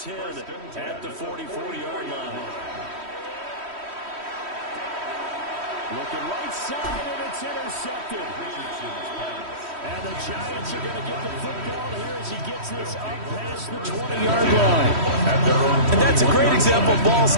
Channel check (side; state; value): left; late; 3.1 ms